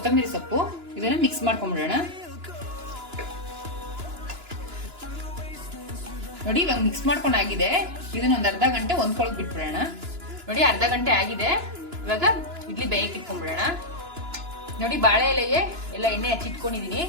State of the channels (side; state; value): left; late; 2.9 ms